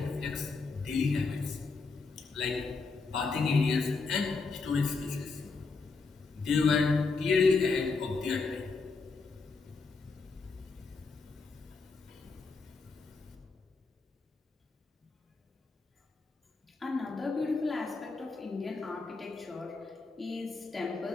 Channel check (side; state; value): right; quieter; 4.2 dB